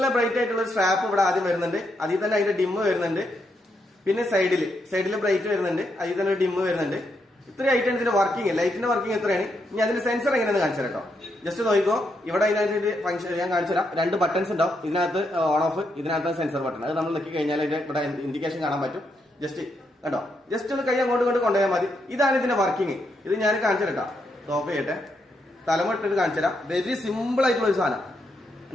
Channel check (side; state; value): both; normal; correlation 0.80